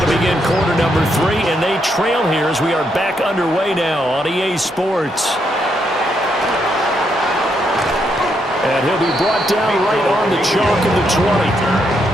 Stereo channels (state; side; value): normal; both; correlation 0.77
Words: to begin quarter number 3, and they trail here as we are back underway now on EA Sports. And he'll be brought down right on the chalk of the 20.